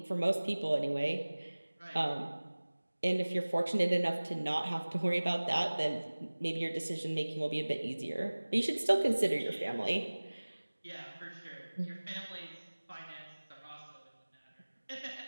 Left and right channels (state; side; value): inverted; both; correlation -1.00